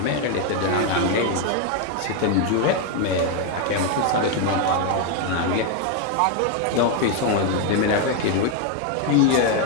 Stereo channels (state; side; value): different; both; correlation 0.01